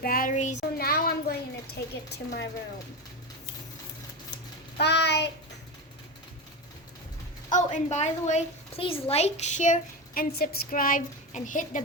So now I'm going to take it to my room. Bye. Oh, and by the way, please like, share, and subscribe, and hit the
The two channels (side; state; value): both; normal; correlation 0.19